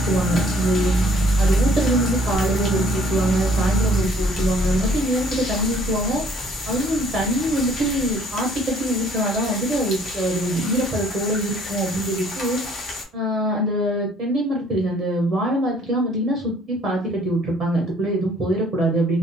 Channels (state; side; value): normal; both; correlation 0.59